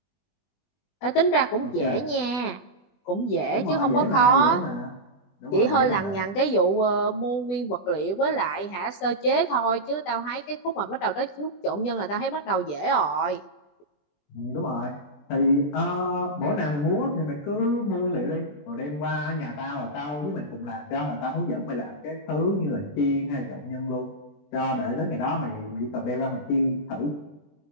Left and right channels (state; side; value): late; right; 20 ms